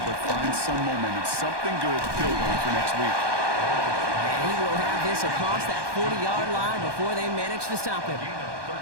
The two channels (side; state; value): left; late; 1.2 ms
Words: but find some momentum, something good to build on for next week. And he will have this across that 40-yard line before they manage to stop him. Gain